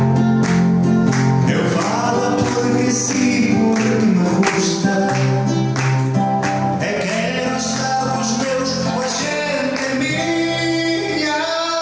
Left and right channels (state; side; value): identical; both; correlation 1.00